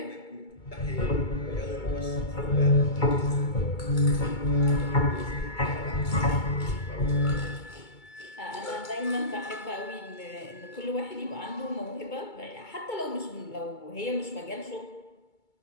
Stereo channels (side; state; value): right; late; 2.3 ms